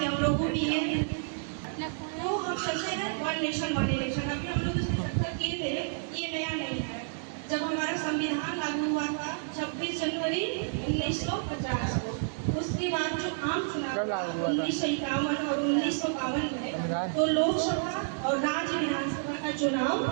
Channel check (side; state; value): left; silent; digital silence